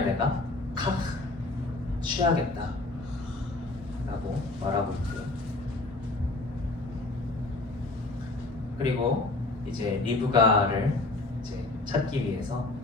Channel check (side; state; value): right; quieter; 3.0 dB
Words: 내가 카흐, 취하겠다 라고 말하고 있고요. 그리고 이제 리브가를 이제 찾기 위해서